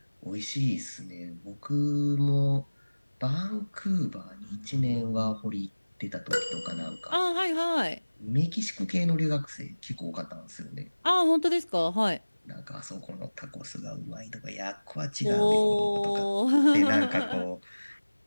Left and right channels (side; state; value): both; inverted; correlation -1.00